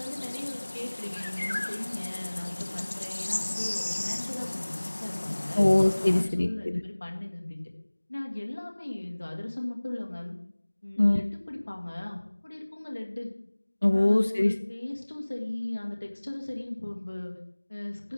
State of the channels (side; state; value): both; inverted; correlation -1.00